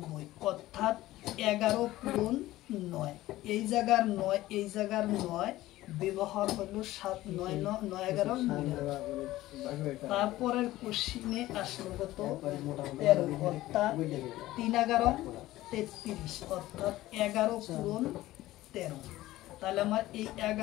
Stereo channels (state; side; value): quieter; right; 16.3 dB